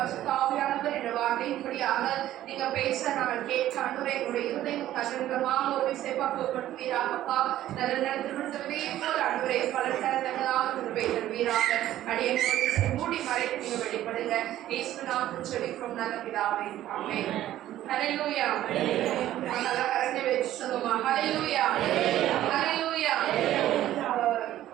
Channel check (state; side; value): quieter; left; 13.3 dB